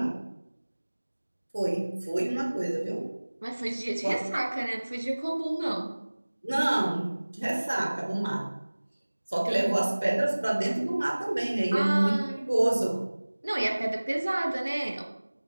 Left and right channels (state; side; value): inverted; both; correlation -1.00